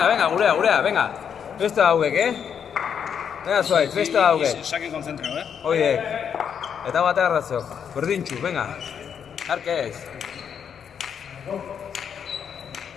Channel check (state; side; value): quieter; right; 7.7 dB